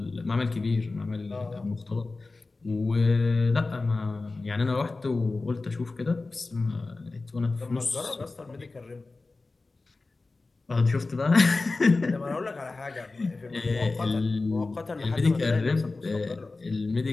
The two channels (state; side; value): quieter; right; 3.5 dB